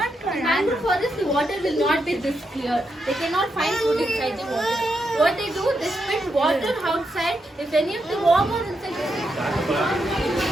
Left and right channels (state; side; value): normal; both; correlation 0.83